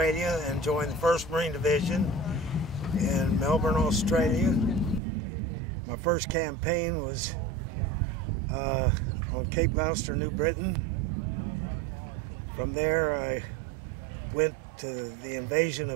and joined the 1st Marine Division in Melbourne, Australia. My first campaign was on Cape Gloucester, New Britain. From there I went to the invasion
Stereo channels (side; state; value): left; drops out; at 5.0 s